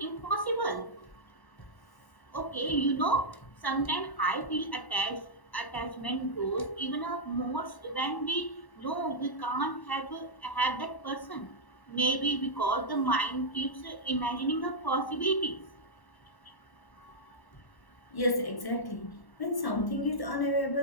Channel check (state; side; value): late; right; 1.1 ms